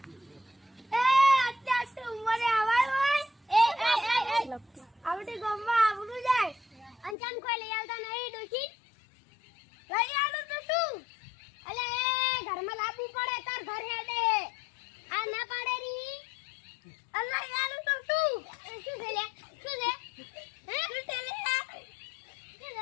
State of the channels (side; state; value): right; drops out; at 7.2 s